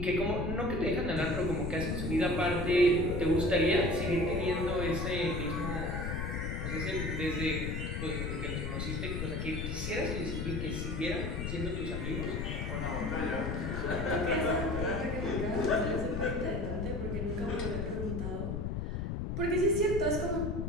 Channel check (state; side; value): noise; left; rumble, 2 dB below the sound